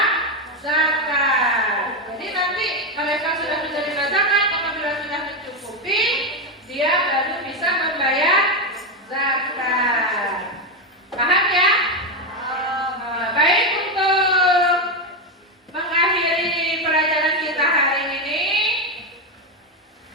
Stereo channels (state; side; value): normal; both; correlation 0.09